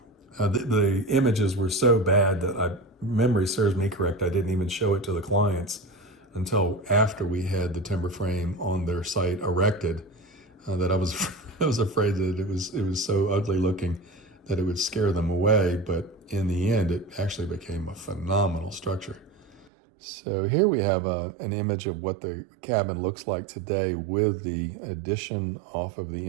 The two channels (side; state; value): left; drops out; at 19.7 s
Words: The images were so bad that memory serves me correct, I didn't even show it to the clients until after we had the timber frame on their site erected. That I was afraid that it was so ugly looking that it would scare them away. But in the end, it actually became a phenomenal structure. So here we have an image of what the cabin looks like today with the addition off of